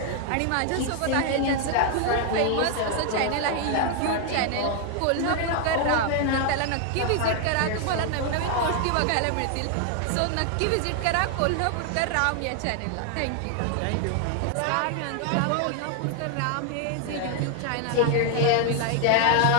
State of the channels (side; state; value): both; different; correlation 0.00